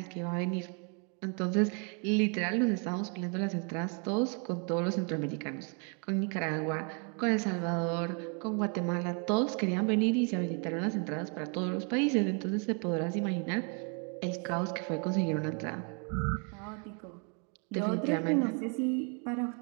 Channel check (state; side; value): quieter; left; 37.2 dB